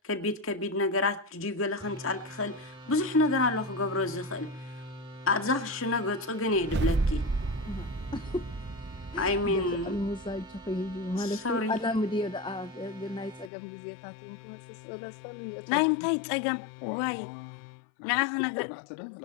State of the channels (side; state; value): right; drops out; at 13.5 s